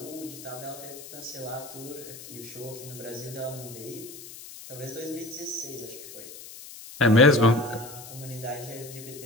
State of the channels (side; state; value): left; noise; hiss, 14 dB below the sound